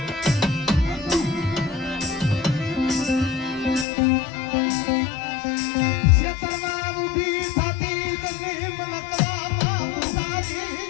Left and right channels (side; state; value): right; drops out; at 3.9 s